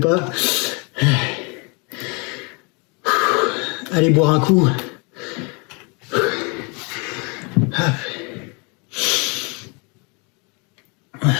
Allez boire un coup.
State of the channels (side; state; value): right; quieter; 32.0 dB